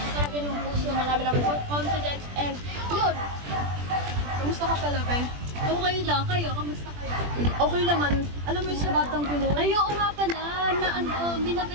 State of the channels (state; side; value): late; left; 21 ms